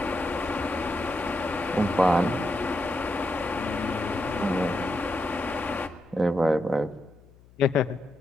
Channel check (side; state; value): left; noise; hum, 26 dB below the sound